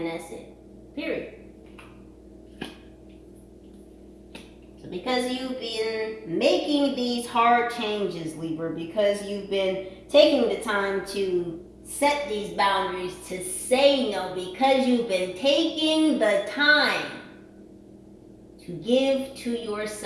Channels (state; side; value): identical; both; correlation 1.00